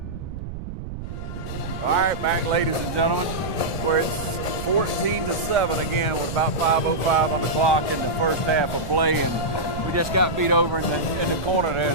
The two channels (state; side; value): noise; right; rumble, 8 dB below the sound